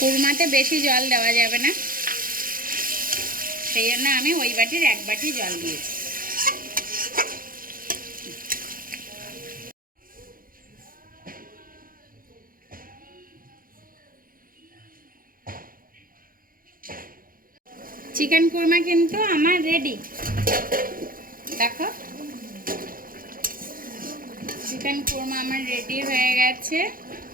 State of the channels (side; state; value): left; late; 0.41 ms